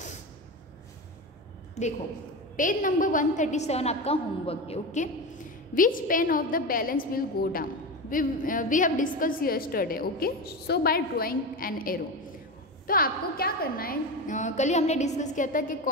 देखो पेज नंबर 137 आपका होमवर्क है। Okay, which pan of the balance will go down, we have discuss yesterday. Okay, so by drawing an arrow. तो आपको क्या करना है, कल ही हमने डिस्कस किया था कि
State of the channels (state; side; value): normal; both; correlation 0.22